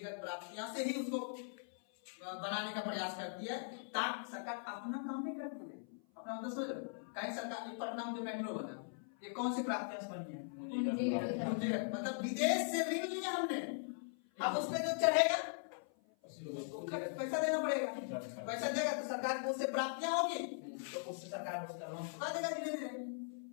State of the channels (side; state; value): right; silent; 51 dB below the other